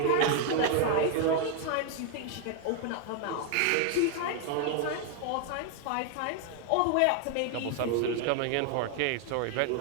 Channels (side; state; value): both; different; correlation 0.00